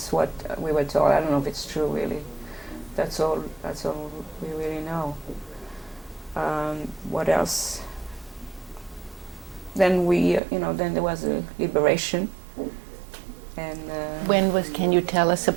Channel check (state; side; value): drops out; left; at 10.4 s